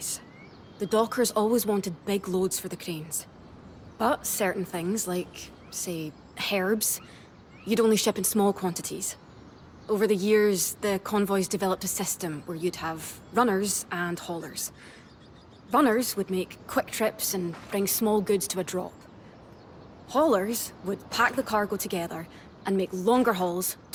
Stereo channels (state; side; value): identical; both; correlation 1.00